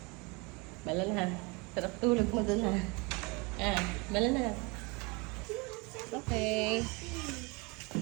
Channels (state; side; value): quieter; left; 28.3 dB